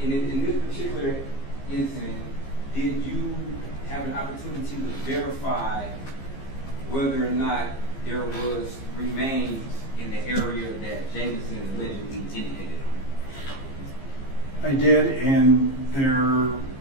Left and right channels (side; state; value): right; late; 15 ms